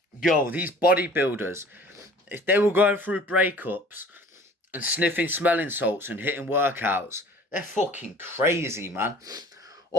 Yo, these bodybuilders, if they were going through breakups and sniffing smelling salts and hitting workouts, they're fucking crazy, man.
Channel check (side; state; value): both; normal; correlation 0.48